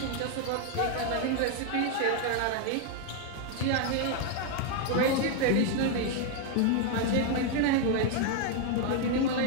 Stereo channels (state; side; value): different; both; correlation 0.01